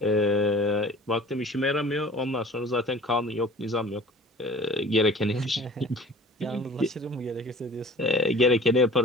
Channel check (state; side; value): normal; both; correlation 0.44